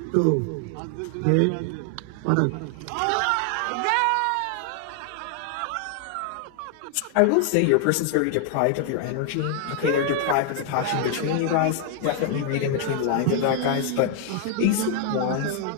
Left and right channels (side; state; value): both; different; correlation 0.00